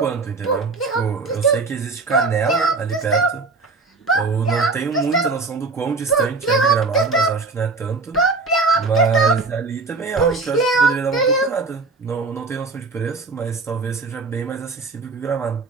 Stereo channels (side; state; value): left; quieter; 4.0 dB